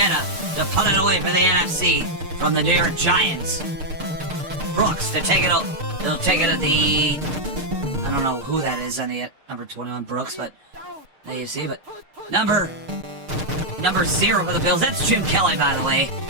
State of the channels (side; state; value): left; late; 6.6 ms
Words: to punt it away for the NFC from the New York Giants. Brooks to take it up. They'll take it at the... I don't know who that is on the number 21 Brooks, but the AFC, but number 0 for the Bills. That's Jim Kelly, by the way,